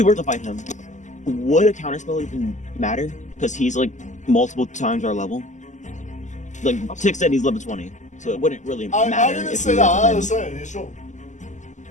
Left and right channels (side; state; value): right; late; 0.35 ms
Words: were to fight him, would a counterspell even matter? Because he's like multiple times our level. Like Tick said, he's level 20, so it wouldn't really I matter. didn't if say we that. were to I fight him. was saying it's sure.